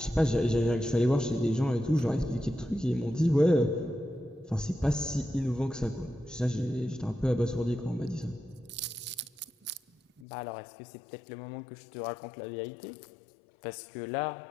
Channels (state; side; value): drops out; right; at 10.2 s